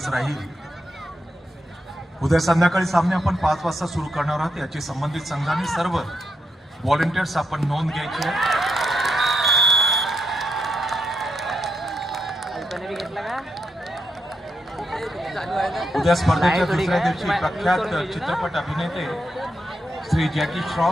राहील. उद्या संध्याकाळी सामने आपण 5 वाजता सुरू करणार आहोत. याची संबंधित संघांनी सर्व व्हॉलेंटियर्स आपण नोंद घ्यायची आहे. उद्या स्पर्धेच्या दुसऱ्या दिवशी प्रख्यात चित्रपट अभिनेते श्री जॅकी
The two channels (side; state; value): both; normal; correlation 0.83